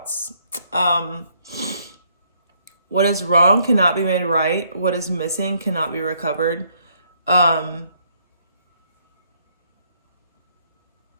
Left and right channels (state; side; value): inverted; both; correlation -0.69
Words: What is wrong cannot be made right. What is missing cannot be recovered.